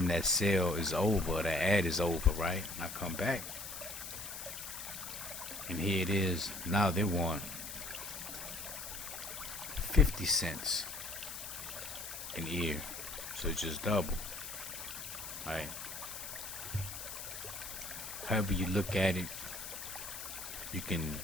that sale is over, that ad is over, right? And I come back, and here it is. Now they want 50 cents an ear, so it's just double, right? However you look at it, you can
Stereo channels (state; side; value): noise; left; hiss, 8 dB below the sound